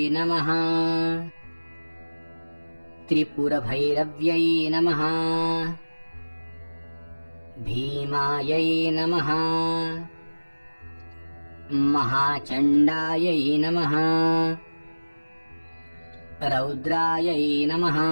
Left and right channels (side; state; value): both; inverted; correlation -1.00